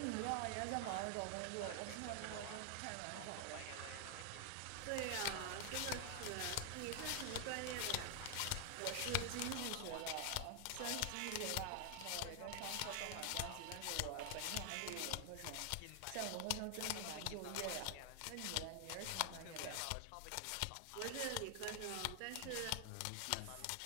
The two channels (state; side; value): different; both; correlation 0.00